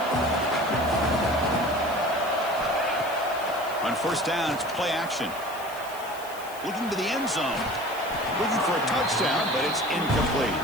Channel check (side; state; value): left; noise; hiss, 17 dB below the sound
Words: On first down, it's play action. Looking to the end zone. Looking for a touchdown, but it's incomplete.